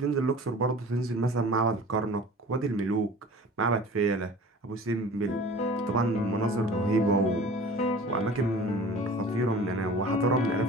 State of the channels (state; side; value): normal; both; correlation 0.42